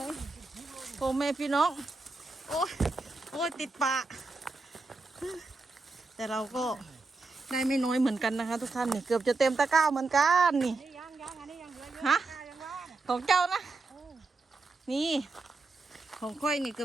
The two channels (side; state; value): left; quieter; 3.5 dB